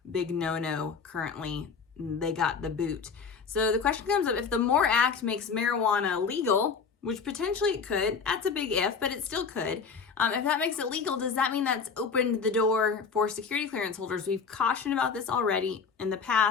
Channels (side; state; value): right; quieter; 5.6 dB